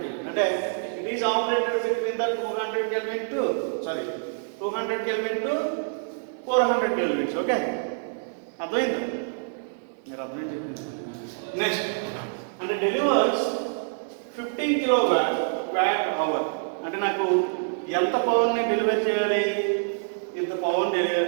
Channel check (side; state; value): left; silent; digital silence